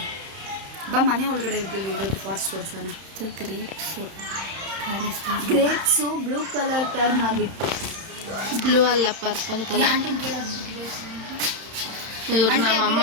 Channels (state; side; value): late; left; 31 ms